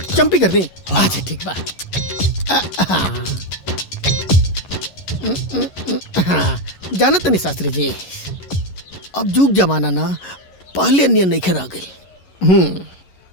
चंपी कर दे। अच्छा ठीक बा। जानत नहीं शास्त्री जी, अब जुग जमाना ना पहले नियन नहीं खरा गई।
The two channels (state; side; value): late; right; 11 ms